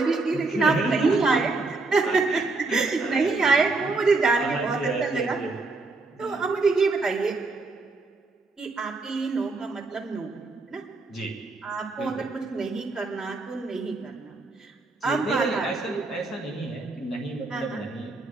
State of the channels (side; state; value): left; quieter; 3.6 dB